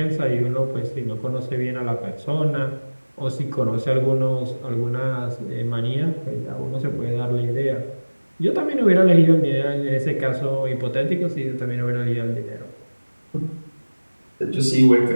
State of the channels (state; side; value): inverted; both; correlation -1.00